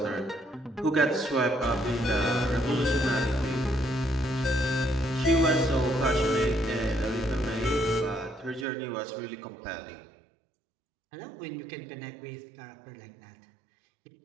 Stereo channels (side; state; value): left; drops out; at 8.7 s